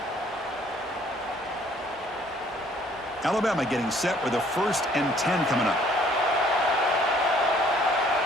Alabama getting set with a 1st and 10 coming up.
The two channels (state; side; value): normal; both; correlation 0.60